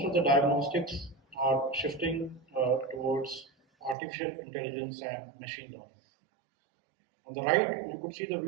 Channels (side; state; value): left; drops out; at 4.0 s